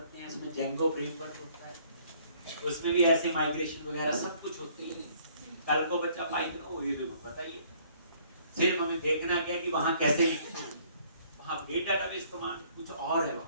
हैं, इसमें जेंगो फ्रेमवर्क होता है, उसमें भी ऐसे माइग्रेशन वगैरह सब कुछ होती है। कल को बच्चा पाइथन हो, ये देखो पता ही है, सिर्फ हमें देखना क्या कि वहां कैसे लिखते हैं। वहां अपडेट डाटाबेस कमांड कुछ और है,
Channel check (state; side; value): inverted; both; correlation -0.61